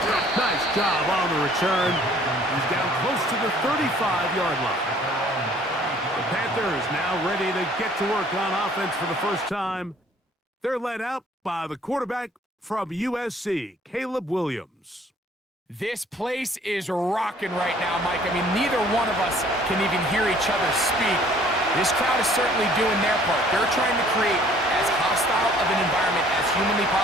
Nice job on the return. He's down close to the 35-yard line. The Panthers now ready to get to work on offense for the first time. They're led out by the quarterback from USC, Caleb Williams. This place is rocking right now, Mike. I mean, neither one of us can even hear each other speak. This crowd is certainly doing their part. They're trying to create as hostile of an environment as humanly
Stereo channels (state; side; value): normal; both; correlation 0.57